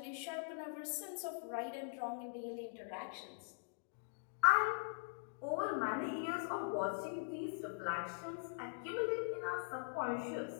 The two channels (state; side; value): silent; right; digital silence